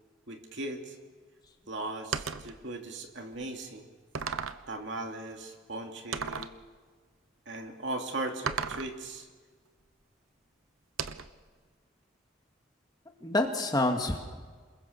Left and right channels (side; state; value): both; normal; correlation 0.30